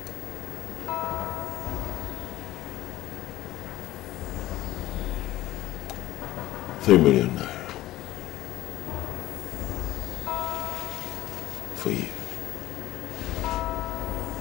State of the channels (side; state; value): right; quieter; 15.8 dB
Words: 3 million naira. For you.